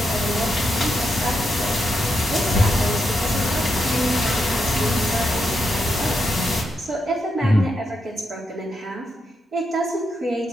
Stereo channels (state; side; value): normal; both; correlation 0.83